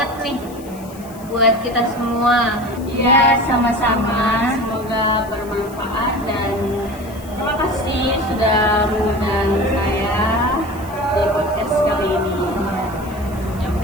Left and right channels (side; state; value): left; noise; hiss, 21 dB below the sound